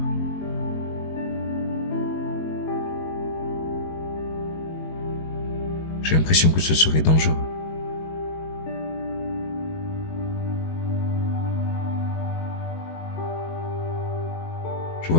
J'ai l'impression que ce serait dangereux. Je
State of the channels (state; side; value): late; right; 19 ms